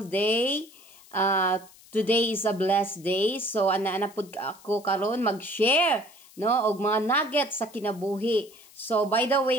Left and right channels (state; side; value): noise; left; hiss, 24 dB below the sound